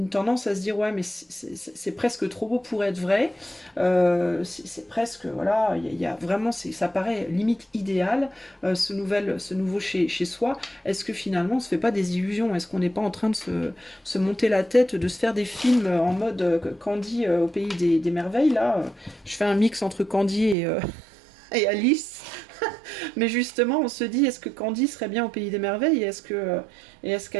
tendance à se dire ouais mais c'est presque trop beau pour être vrai. C'est presque voilà, il y a vraiment ça paraît limite idéal ce nouveau chez soi. Est-ce que finalement on se fait pas des illusions? Est-ce qu'on n'est pas en train de se monter la tête, de se faire des films en mode Candy au pays des merveilles là? Je fais un mix entre Candy et Alice. Mais justement, on se dit, est-ce que Candy serait bien au pays des merveilles et est-ce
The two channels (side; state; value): left; drops out; at 20.6 s